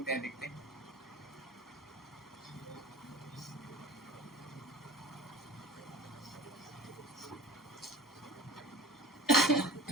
हैं देखते हैं।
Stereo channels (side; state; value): both; normal; correlation 0.41